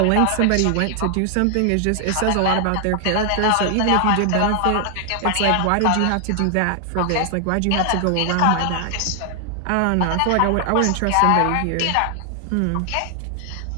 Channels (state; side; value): different; both; correlation 0.00